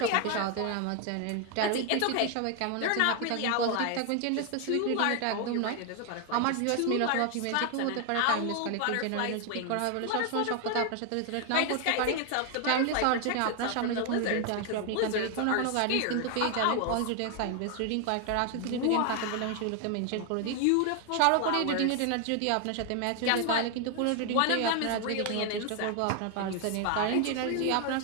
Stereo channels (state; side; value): different; both; correlation 0.01